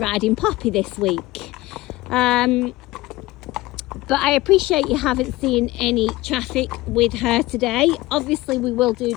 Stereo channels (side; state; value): right; quieter; 18.8 dB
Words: Poppy this week. But I appreciate you haven't seen any traffic with her today. Obviously we will do